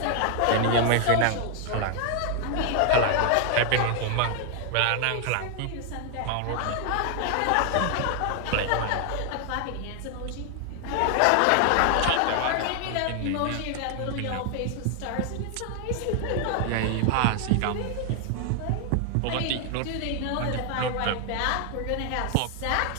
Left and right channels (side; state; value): both; different; correlation 0.00